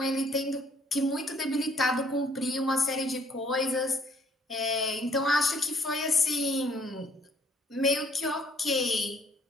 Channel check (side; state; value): both; normal; correlation 0.63